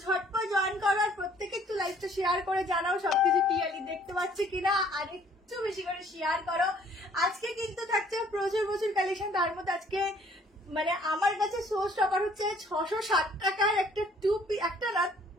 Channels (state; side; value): normal; both; correlation 0.59